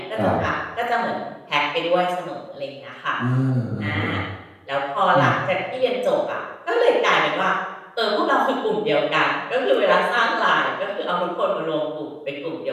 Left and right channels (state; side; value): identical; both; correlation 1.00